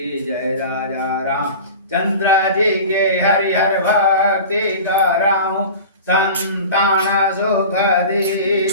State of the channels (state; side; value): inverted; both; correlation -0.35